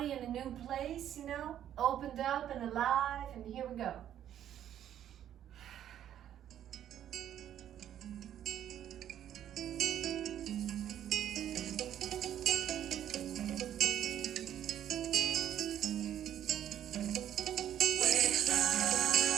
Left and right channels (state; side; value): quieter; left; 10.7 dB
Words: in a new place, you know, opened up and alive, and here we go.